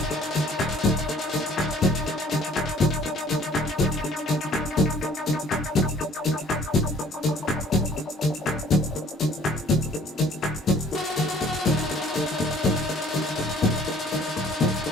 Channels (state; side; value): normal; both; correlation 0.56